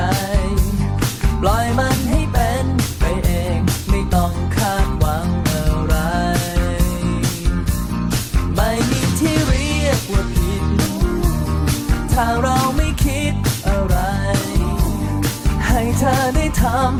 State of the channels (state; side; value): identical; both; correlation 1.00